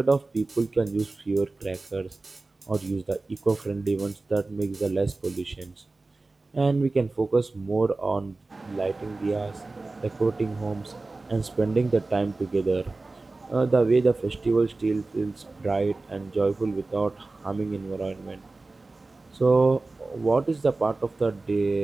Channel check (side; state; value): left; quieter; 3.4 dB